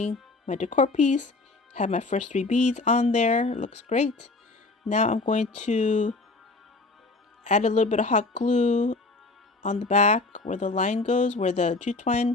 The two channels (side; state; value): right; quieter; 3.4 dB